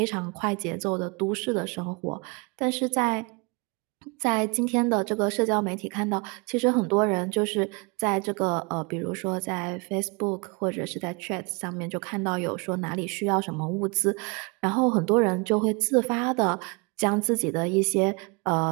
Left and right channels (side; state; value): left; quieter; 30.8 dB